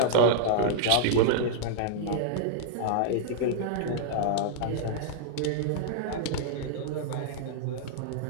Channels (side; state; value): both; different; correlation -0.01